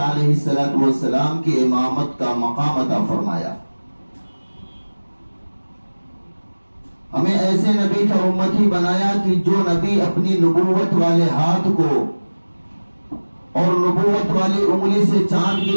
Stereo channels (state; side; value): inverted; both; correlation -1.00